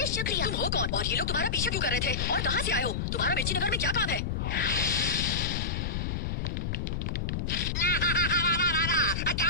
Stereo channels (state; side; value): noise; left; rumble, 1 dB below the sound